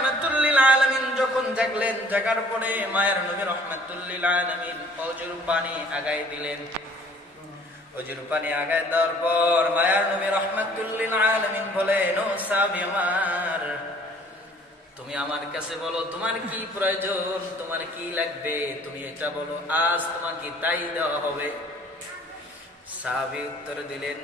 লিল আলামিন যখন জাগলেন, জাগার পরে মায়ার নবী রাহমাতুল লিল আলামিন ওযুর পানি আগায় দিলেন। ওযুর পানি আগায় দেওয়ার পর মায়ার নবী রাহমাতুল লিল আলামিন বলেন, ও সাহাবী আমার, তুমি আমার কাছে বলো তোমার কি প্রয়োজন, তোমার কি লাগবে, তুমি এটা বলো, আজ তোমাকে তাই দেওয়া হবে। সাহাবী উত্তর দিলেন,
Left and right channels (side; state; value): both; normal; correlation 0.55